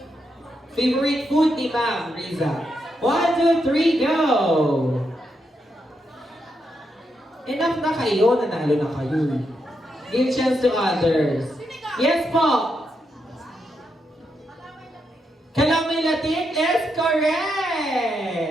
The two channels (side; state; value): both; normal; correlation 0.82